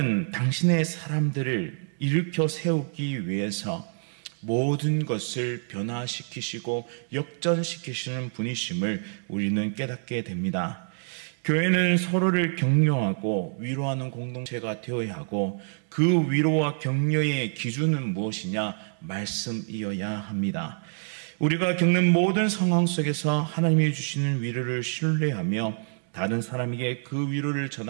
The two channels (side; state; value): left; silent; 60 dB below the other